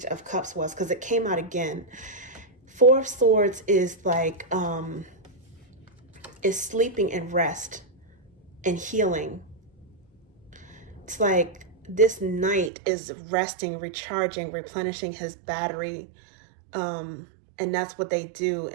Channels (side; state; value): left; drops out; at 12.7 s